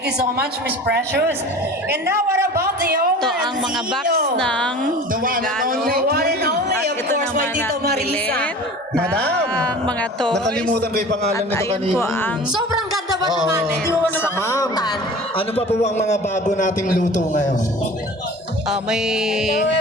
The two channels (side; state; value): both; normal; correlation 0.40